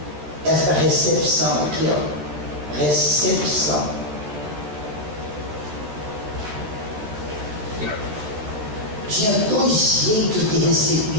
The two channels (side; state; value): left; late; 14 ms